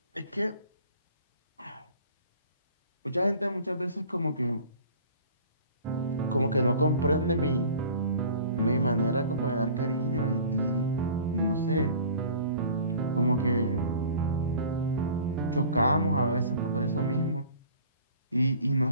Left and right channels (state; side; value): inverted; both; correlation -0.46